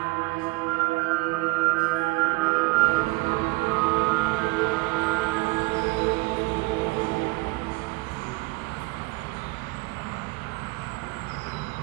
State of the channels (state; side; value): quieter; left; 24.3 dB